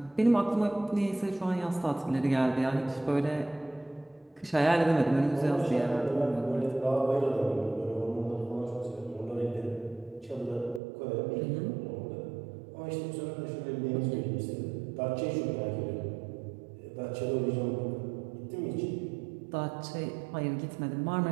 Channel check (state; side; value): drops out; left; at 10.8 s